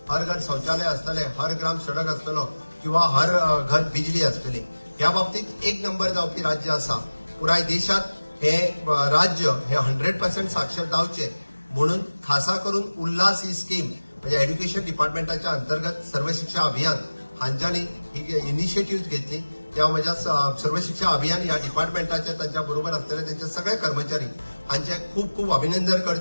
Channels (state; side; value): inverted; both; correlation -1.00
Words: हर घर शौचालय आसतले, हर ग्राम सडक आसतलो किंवा हर घर बिजली आसतली. ह्या बाबतीत एक नंबर जावपी राज्य आसा. पुराय देशात हे राज्य हे 100% साक्षर जावचे म्हणून खासा करून उल्हास ही स्कीम म्हणजे एज्युकेशन डिपार्टमेंटाच्या अंतर्गत सर्व शिक्षा अभियान हांच्यानी ही इनिशिएटिव्ह घेतली. त्या माझ्या सर्व शिक्षा अभियान या डिपार्टमेंटाचे त्यांच्या बरोबर असलेले त्यांचे सगळे कर्मचारी हांचे खूप खूप अभिनंदन